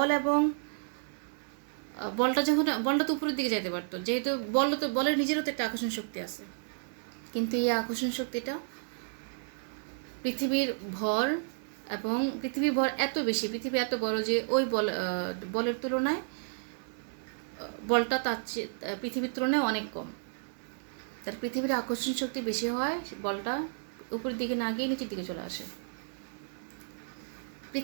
এবং বলটা তো উপরের দিকে যেতে পারতো, যেহেতু বলের নিজেরও তো একটা আকর্ষণ শক্তি আছে। কিন্তু এই আকর্ষণ শক্তিটা পৃথিবীর ভর এত বেশি, পৃথিবী এত বড় যে ওই বলের তুলনায় বলটা তার চেয়ে পৃথিবীর তুলনায় অনেক কম। তার পৃথিবীর আকর্ষণ শক্তি বেশি হয়, পৃথিবীটা উপরের দিকে না গিয়ে নিচের দিকে চলে আসে।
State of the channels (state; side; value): silent; left; 56 dB below the other